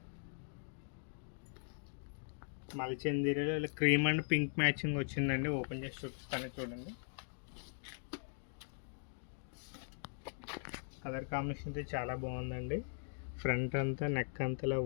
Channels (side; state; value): right; silent; digital silence